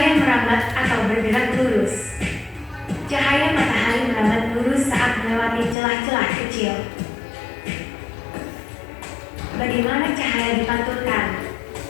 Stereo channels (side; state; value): right; drops out; at 5.8 s